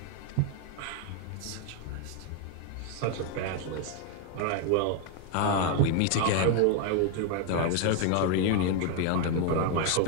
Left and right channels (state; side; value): different; both; correlation 0.01